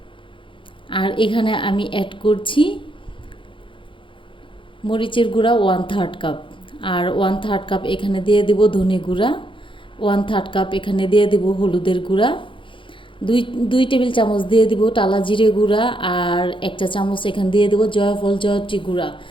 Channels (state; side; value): late; right; 0.25 ms